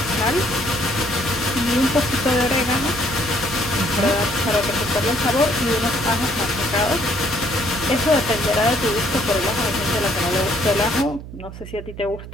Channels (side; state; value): right; noise; hum, 13 dB below the sound